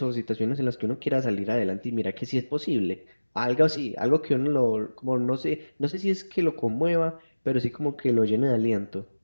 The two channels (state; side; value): inverted; both; correlation -1.00